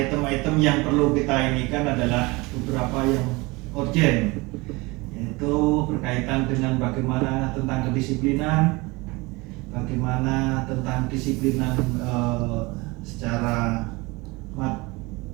yang perlu kita inikan adalah beberapa yang urgent, yaitu berkaitan dengan bagaimana tentang kedisiplinan, bagaimana tentang disiplinan secara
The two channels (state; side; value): quieter; left; 24.1 dB